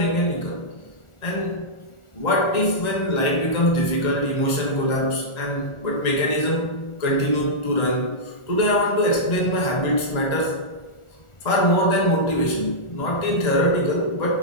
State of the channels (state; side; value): late; right; 1.4 ms